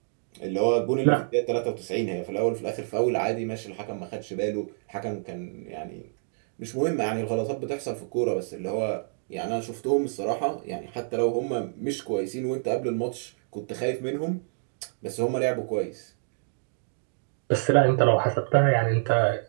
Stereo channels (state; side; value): silent; left; digital silence